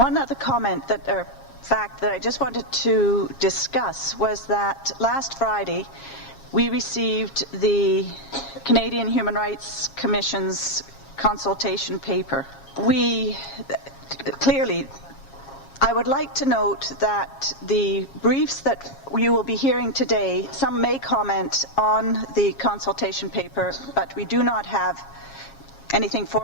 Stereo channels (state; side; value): late; right; 7.3 ms